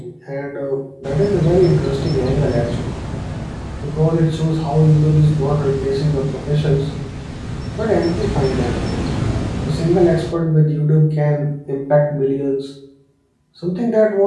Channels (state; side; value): identical; both; correlation 1.00